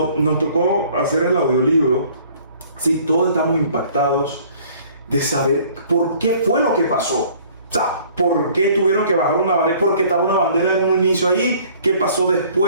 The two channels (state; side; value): inverted; both; correlation -0.55